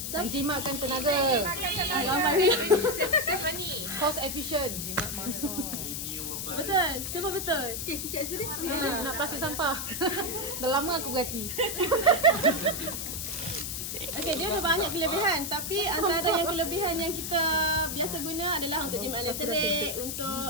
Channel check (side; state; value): left; noise; hiss, 4 dB below the sound